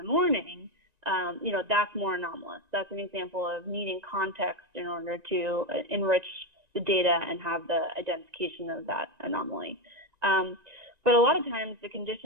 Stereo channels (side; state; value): left; late; 1.9 ms